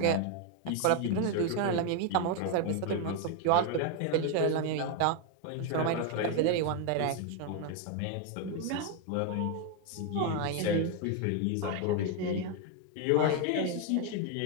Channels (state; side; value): different; both; correlation 0.01